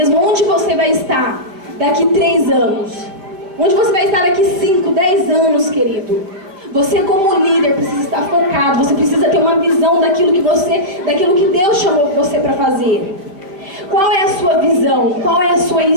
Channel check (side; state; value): left; late; 5.1 ms